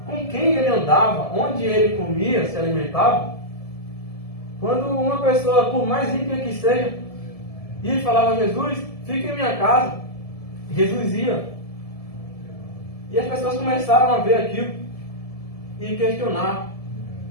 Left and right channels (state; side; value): late; right; 1.7 ms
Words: com quem ele andava, onde ele comia, se alimentava, quando uma pessoa, por mais ímpia que seja, ia e falava: Jesus, fica em minha casa, Jesus ia. E as pessoas começaram a ver aquilo e questionar.